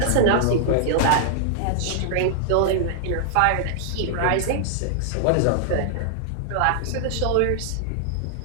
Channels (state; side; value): different; both; correlation -0.01